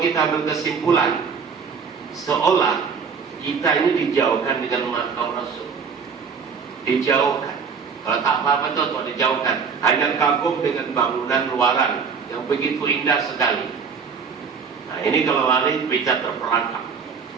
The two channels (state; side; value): quieter; left; 6.0 dB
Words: kita berkesimpulan, seolah kita ini dijauhkan dengan makam Rasul. Dijauhkan. Kalau tak apa-apa tuh dijauhkan. Hanya kagum dengan bangunan luaran yang begitu indah sekali. Nah ini kalau lari bisa terperangkap.